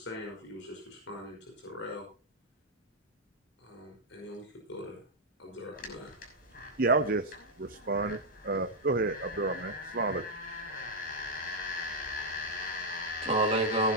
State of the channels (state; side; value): normal; both; correlation -0.03